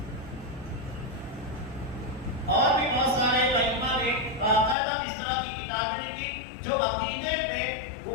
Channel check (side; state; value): right; drops out; at 4.8 s